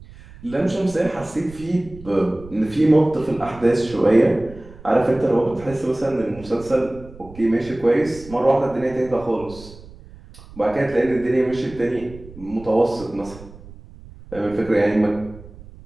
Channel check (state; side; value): noise; right; rumble, 19 dB below the sound